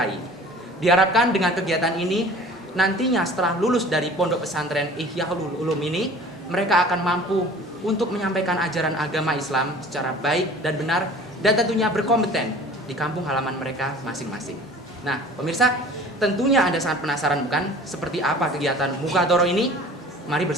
Diharapkan dengan kegiatan ini, nantinya setelah lulus dari pondok pesantren Ihyaul Ulum ini, mereka akan mampu untuk menyampaikan ajaran agama Islam secara baik dan benar, dan tentunya berkompeten di kampung halaman mereka masing-masing. Nah, pemirsa, tentunya Anda sangat penasaran bukan seperti apa kegiatan Mukadoroh ini? Mari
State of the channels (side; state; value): both; normal; correlation 0.45